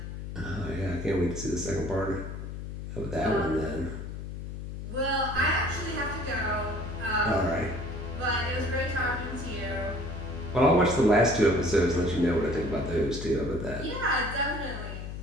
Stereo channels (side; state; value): left; noise; hum, 8 dB below the sound